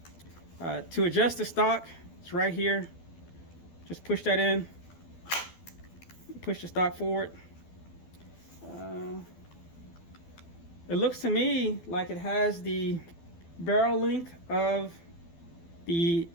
To adjust the stock, it's right here. Just push that in, push the stock forward. It looks to me like it has the barrel length of the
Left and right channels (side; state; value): right; late; 12 ms